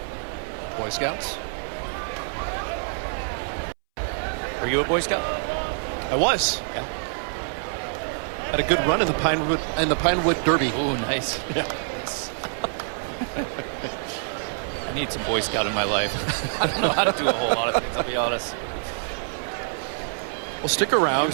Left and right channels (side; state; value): left; silent; 61 dB below the other